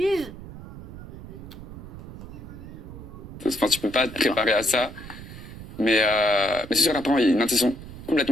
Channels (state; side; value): noise; right; rumble, 13 dB below the sound